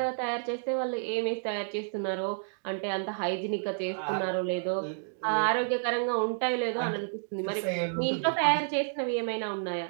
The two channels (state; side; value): silent; left; digital silence